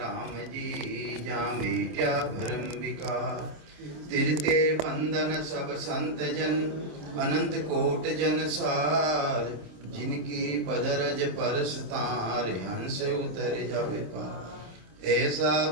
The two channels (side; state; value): left; late; 27 ms